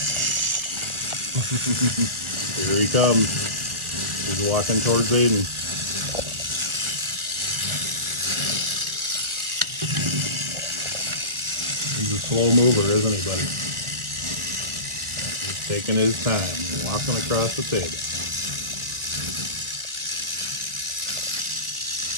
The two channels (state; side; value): late; left; 1.4 ms